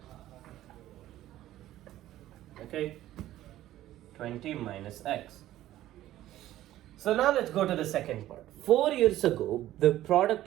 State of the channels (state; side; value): quieter; left; 14.0 dB